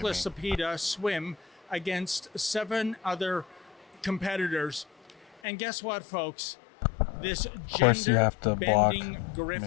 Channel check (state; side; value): drops out; right; at 5.2 s